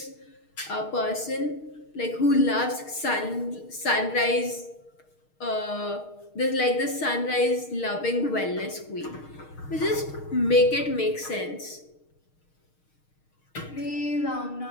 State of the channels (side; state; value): right; late; 6.5 ms